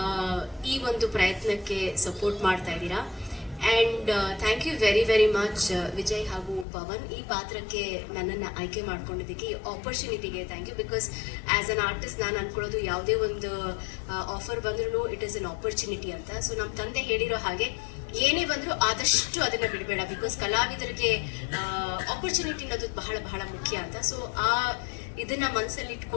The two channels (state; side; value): drops out; right; at 6.7 s